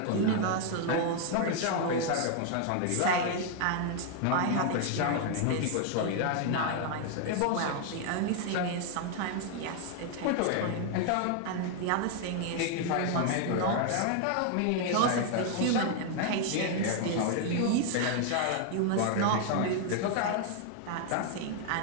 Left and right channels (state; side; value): different; both; correlation 0.00